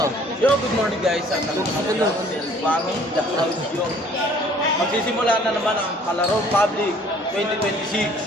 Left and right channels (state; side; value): normal; both; correlation 0.55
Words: Yo, good morning guys. At ako ng Ilbano, the audio. Magsisimula na naman ang Kalaro Public 2026.